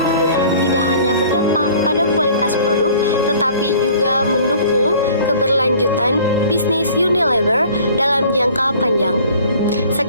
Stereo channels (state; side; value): inverted; both; correlation -0.49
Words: tidak hanya berdampak pada kualitas produk, tetapi juga mendukung keberlanjutan bisnis Unilever dalam jangka panjang.